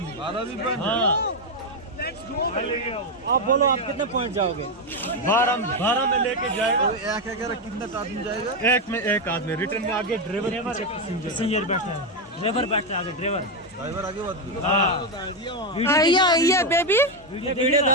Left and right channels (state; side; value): normal; both; correlation 0.06